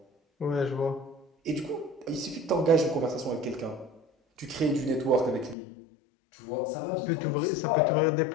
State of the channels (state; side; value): drops out; right; at 5.6 s